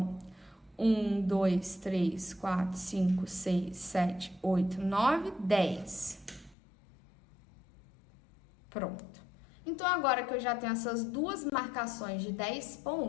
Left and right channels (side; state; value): right; drops out; at 6.6 s